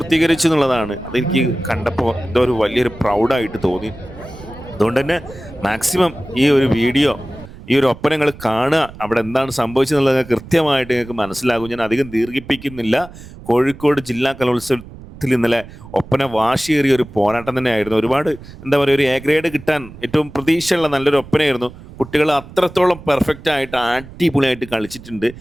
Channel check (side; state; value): right; noise; rumble, 17 dB below the sound